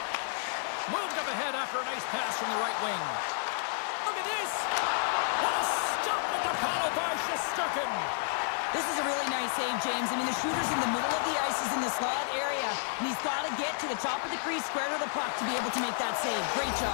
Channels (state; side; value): silent; right; 57 dB below the other